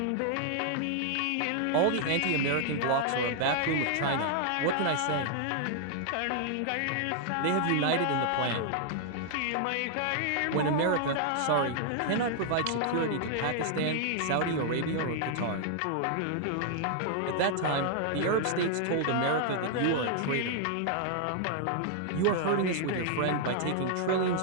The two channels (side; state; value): both; different; correlation 0.00